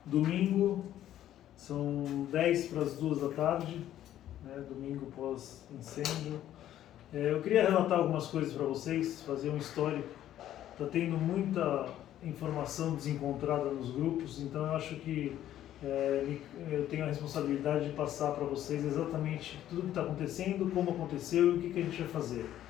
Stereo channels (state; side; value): quieter; right; 12.1 dB